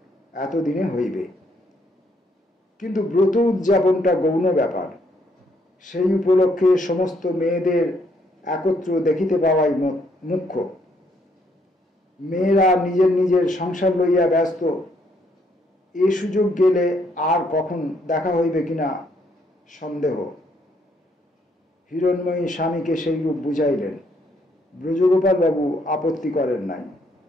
এতদিনে হইবে। কিন্তু ব্রত উদযাপনটা গৌণ ব্যাপার। সেই উপলক্ষে সমস্ত মেয়েদের একত্র দেখিতে পাওয়াই মুখ্য। মেয়েরা নিজের নিজের সংসার লইয়া ব্যস্ত। এ সুযোগ গেলে আর কখন দেখা হইবে কিনা সন্দেহ। হিরণময়ী স্বামীকে সেইরূপ বুঝাইলেন। ব্রজগোপাল বাবু আপত্তি করেন নাই।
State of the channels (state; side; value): normal; both; correlation 0.71